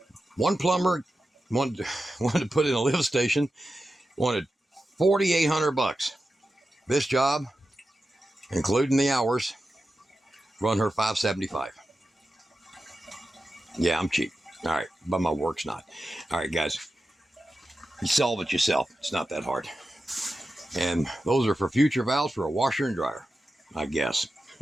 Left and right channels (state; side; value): normal; both; correlation 0.92